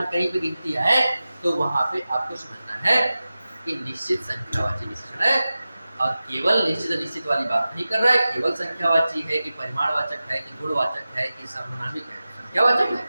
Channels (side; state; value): both; inverted; correlation -0.95